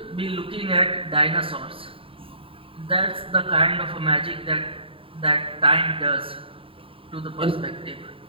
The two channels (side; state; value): left; late; 0.26 ms